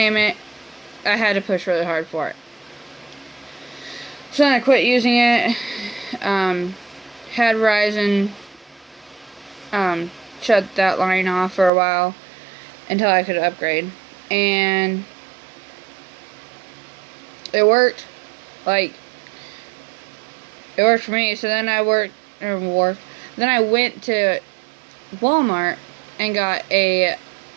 it. I had to push really hard for it. So then I quit using it. Had Verizon shut that line off for a while until I could upgrade, and it worked. Like, it worked for me. So then I Then I went to Walmart and got a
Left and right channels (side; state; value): left; drops out; at 11.7 s